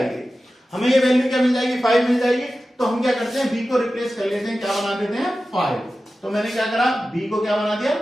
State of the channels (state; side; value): normal; both; correlation 0.94